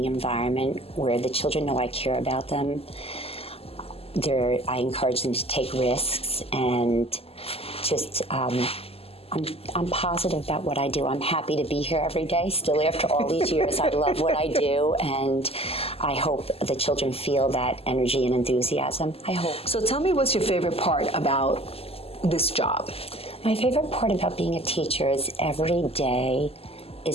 environment where the children know I care about them. I encourage them to take risks, and just I'm positive about what I do. I'm happy to be here every day. Still, after all these years, I love what I do, and I hope the children feel that energy and enthusiasm. I hope. So tell me, what's your favorite part about this job? My favorite part about being a teacher is every day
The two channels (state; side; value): late; right; 0.29 ms